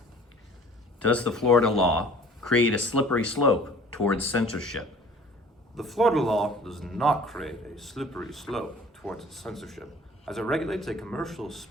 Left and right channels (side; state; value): both; normal; correlation 0.49